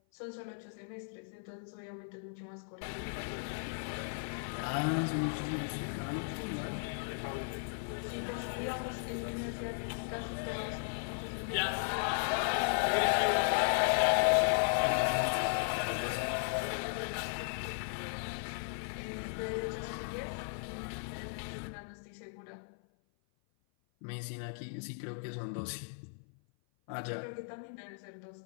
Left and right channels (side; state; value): right; silent; 54 dB below the other